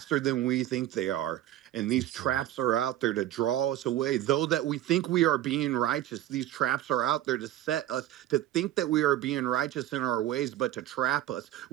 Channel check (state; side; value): quieter; left; 13.4 dB